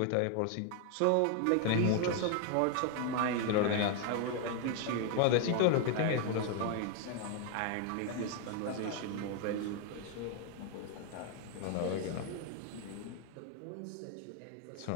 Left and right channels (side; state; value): both; different; correlation 0.00